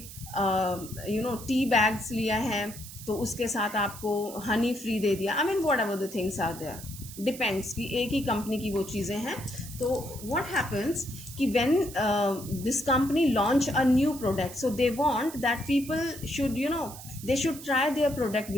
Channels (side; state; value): right; noise; hiss, 14 dB below the sound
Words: टी बैग्स लिया है तो उसके साथ आपको हनी फ्री दे दिया. I mean whatever the things are there, depends कि एक ही कंपनी की वो चीज़ें हैं. तो व्हाट हैपन्स कि when this company launch a new product, so they want that people should they should try their product